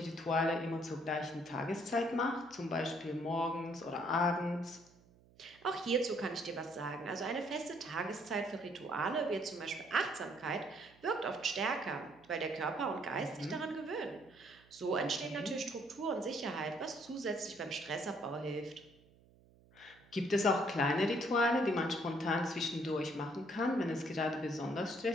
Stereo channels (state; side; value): noise; right; hum, 27 dB below the sound